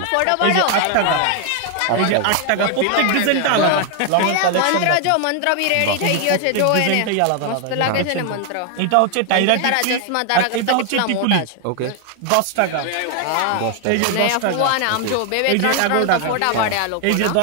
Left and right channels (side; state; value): both; different; correlation 0.00